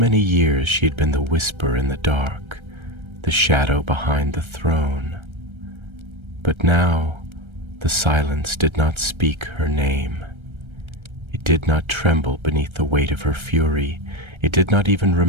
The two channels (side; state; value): left; late; 1.3 ms